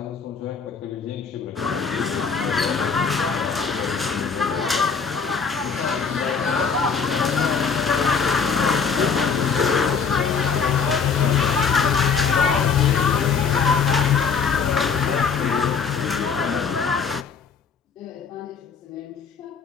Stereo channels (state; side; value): quieter; right; 5.9 dB